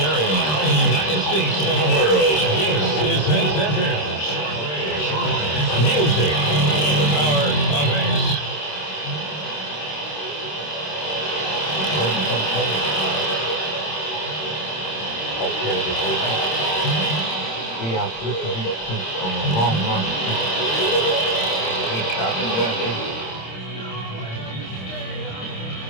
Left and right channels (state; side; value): late; right; 26 ms